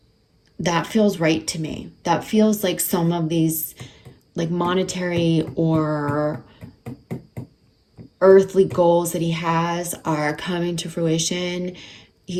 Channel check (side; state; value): both; identical; correlation 1.00